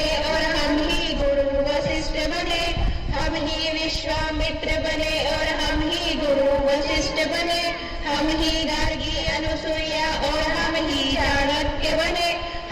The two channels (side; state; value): both; identical; correlation 1.00